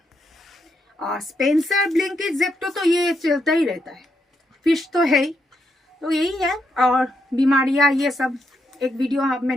और स्पेंसर, ब्लिंकिट, ज़ेप्टो तो ये चलता ही रहता है। फिश तो है ही, तो यही है। और बीमारियाँ ये सब एक वीडियो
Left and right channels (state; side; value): normal; both; correlation 0.80